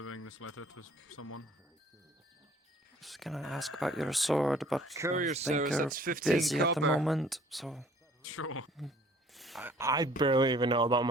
this letter to someone. I was gonna ask about your sword, but Courier I think service, you're that's 15 busy at the copper. moment, so... Sure. I barely even know about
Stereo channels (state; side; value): normal; both; correlation 0.55